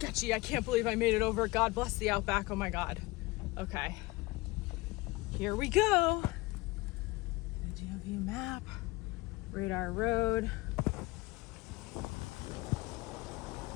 I can't believe I made it over. God bless the Outback. Oh my God. Okay. Here we go. GeoView map, Radar Road.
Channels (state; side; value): quieter; right; 22.4 dB